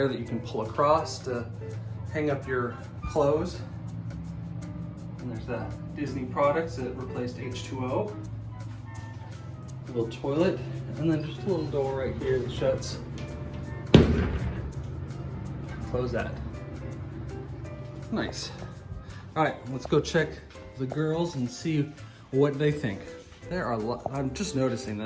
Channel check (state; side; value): identical; both; correlation 1.00